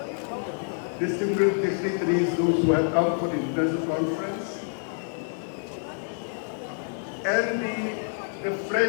distinguished dignitaries, those who have come for the international conference, and the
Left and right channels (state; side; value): silent; right; digital silence